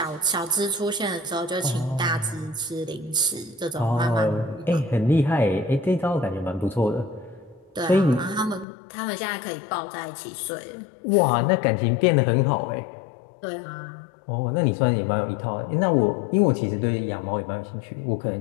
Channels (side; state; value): right; drops out; at 8.7 s